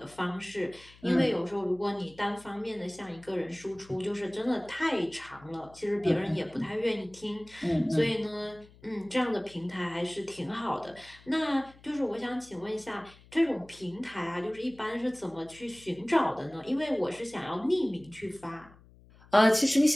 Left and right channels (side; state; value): left; noise; hum, 25 dB below the sound